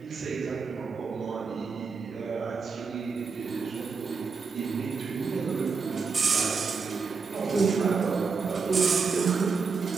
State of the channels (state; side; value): quieter; left; 5.0 dB